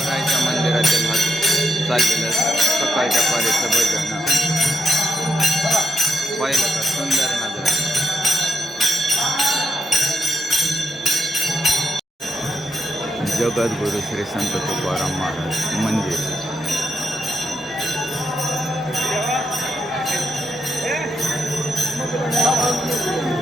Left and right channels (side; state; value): both; normal; correlation 0.80